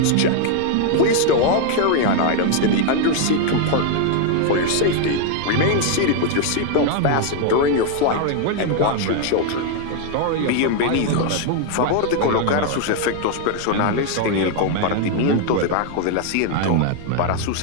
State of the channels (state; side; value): different; both; correlation 0.01